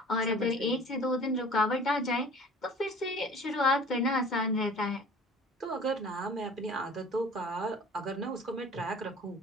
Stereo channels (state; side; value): normal; both; correlation 0.45